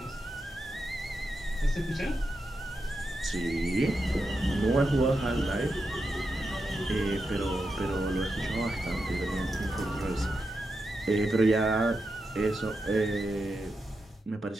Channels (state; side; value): normal; both; correlation 0.87